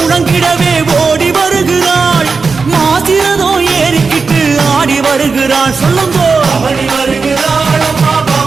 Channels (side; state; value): left; quieter; 4.7 dB